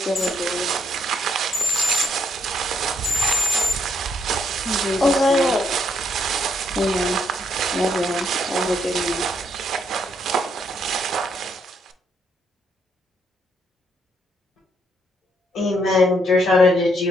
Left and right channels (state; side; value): normal; both; correlation 0.74